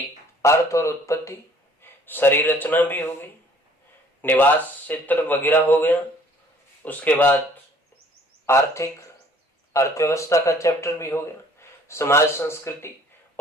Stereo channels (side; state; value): both; normal; correlation 0.56